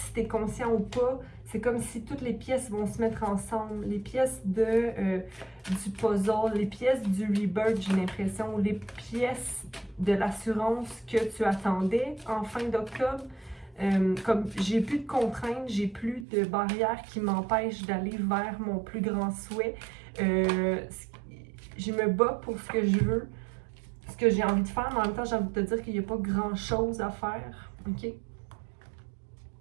tu es conscient ou pas, c'est comme si toutes les pièces vont se mettre ensemble. Les pièces du puzzle, les pièces du rebirth, j'ai l'impression, les pièces de l'assurance que tu attendais en fin d'octobre. Comme j'ai plus de contraintes, j'ai plus de barrières qui m'empêchent d'aller vers mon plus grand souhait. Je me bats pour ce que je veux, ce que j'ai envie de faire, mais en même temps, j'ai envie de te dire qu'il n'y a pas grand-chose à faire, ok? Il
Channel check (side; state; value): left; drops out; at 16.2 s